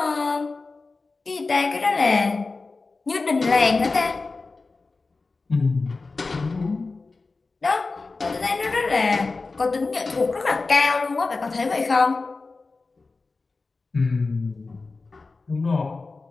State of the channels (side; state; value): right; quieter; 3.8 dB